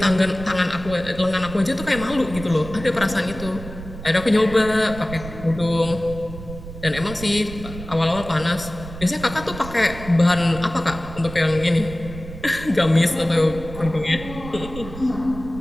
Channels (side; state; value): right; noise; rumble, 12 dB below the sound